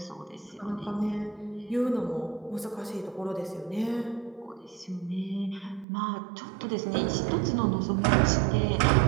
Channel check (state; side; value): drops out; left; at 5.9 s